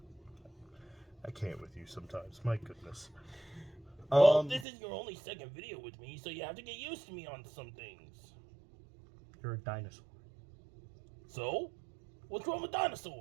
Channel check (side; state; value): left; drops out; at 4.7 s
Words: I can't with you sometimes. My goodness. Well, this is your only second video with me, so you have to get used to me on some things. You're a dinosaur. So? What's wrong with